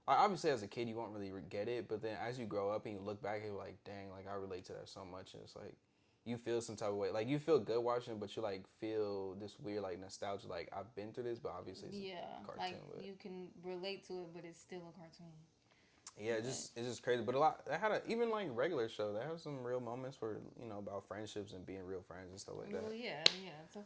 Obviously, as a kid, you won't really get it. But then as you grow up and you look back, you're like, dang, like I relate to that so much. And it's like, you feel some type of way. Like you feel good watching it, but you like feel this weird like nostalgia. Like I've been through this, but obviously it's a cartoon. Like you can relate to it, but it's still a cartoon. Yeah, it's just crazy. But a lot. They had even like regular show. They have some real moments where about friendships and being real friends and stuff like that. Well, yeah,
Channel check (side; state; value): both; identical; correlation 1.00